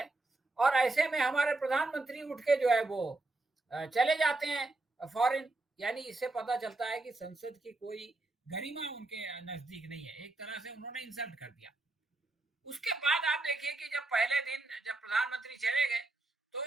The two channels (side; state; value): left; quieter; 3.0 dB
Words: और ऐसे में हमारे प्रधानमंत्री उठ के जो है वो चले जाते हैं फॉरेन। यानी इससे पता चलता है कि संसद की कोई गरिमा उनके नजदीक नहीं है, एक तरह से उन्होंने इंसल्ट कर दिया। उसके बाद आप देखिए कि जब पहले दिन जब प्रधानमंत्री चले गए तो